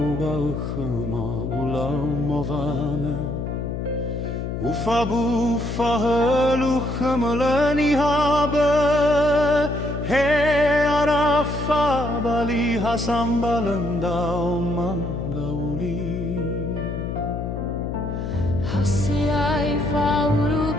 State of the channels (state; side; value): noise; left; hum, 4 dB below the sound